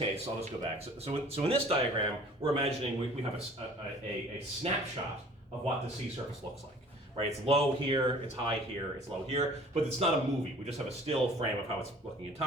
I'll just go back. So in this diagram, we're imagining we have a snapshot of what the sea surface looks like. Right? It's low here, it's high here, it's low here, but it's not a movie. We just have a still frame of how it's looking in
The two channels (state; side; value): normal; both; correlation 0.50